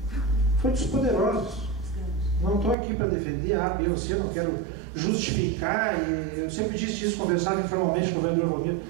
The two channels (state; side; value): drops out; left; at 2.8 s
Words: foi dos poderosos. Não estou aqui para defender A, B ou C, não quero justificar, e eu sempre disse isso, conversava informalmente com o vereador Valmir.